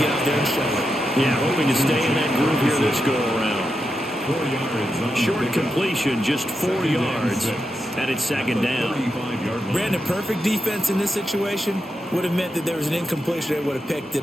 out there and show it. Yeah, hoping to stay in that groove here this go-around. Short completion, just 4 yards, and it's second down. Brandon, perfect defense in this situation would have meant that there was an incompletion. They would have picked it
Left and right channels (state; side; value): normal; both; correlation 0.87